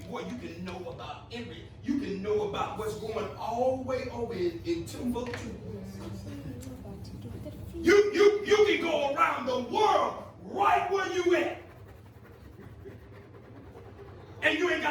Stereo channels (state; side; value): identical; both; correlation 1.00